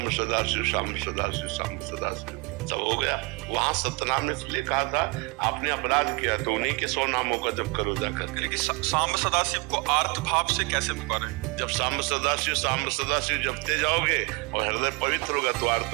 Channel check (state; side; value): quieter; left; 27.3 dB